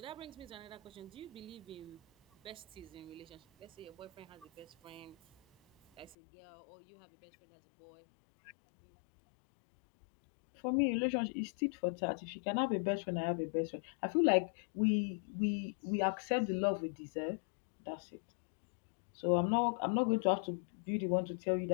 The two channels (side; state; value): right; drops out; at 6.2 s